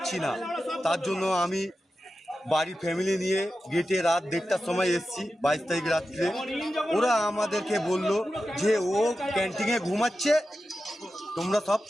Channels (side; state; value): both; normal; correlation 0.92